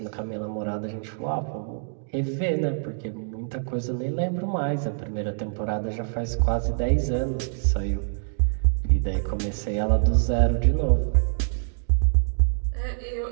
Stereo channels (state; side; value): silent; left; digital silence